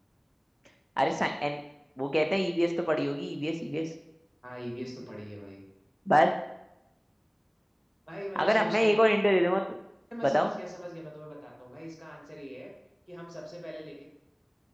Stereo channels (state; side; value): identical; both; correlation 1.00